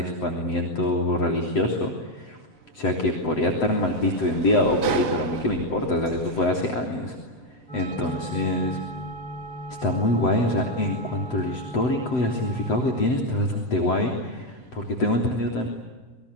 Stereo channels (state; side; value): late; right; 7.9 ms